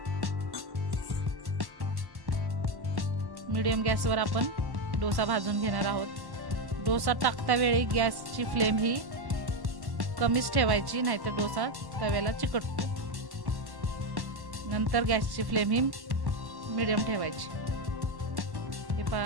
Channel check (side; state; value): left; late; 1.1 ms